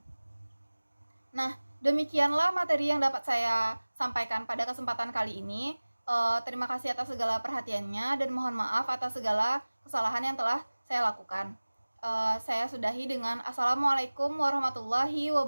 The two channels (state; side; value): inverted; both; correlation -1.00